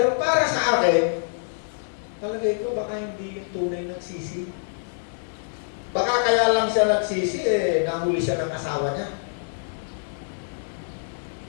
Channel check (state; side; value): silent; right; 59 dB below the other